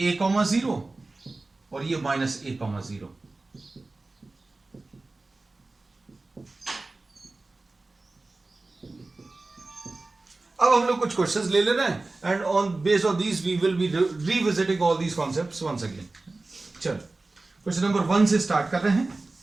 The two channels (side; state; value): left; quieter; 3.3 dB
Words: a,0 और ये -a,0। अब हम लोग कुछ क्वेश्चंस ले ले रहे हैं and on based on these we will be revisiting all these concepts once again. चलो क्वेश्चन नंबर 1 से स्टार्ट कर रहे हैं।